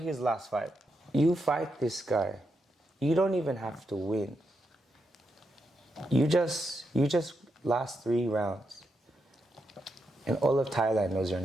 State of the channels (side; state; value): both; normal; correlation 0.83